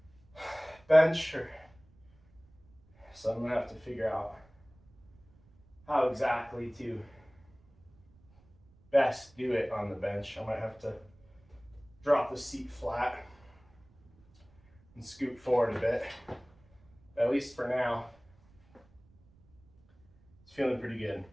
bench, so I'm gonna have to figure out how exactly to best do it on the bench. I might have to drop the seat flat and scoot forward a bit. At least for now, it's feeling pretty good.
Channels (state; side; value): noise; right; rumble, 29 dB below the sound